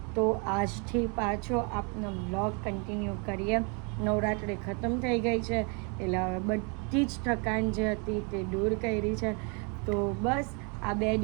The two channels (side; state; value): left; quieter; 35.1 dB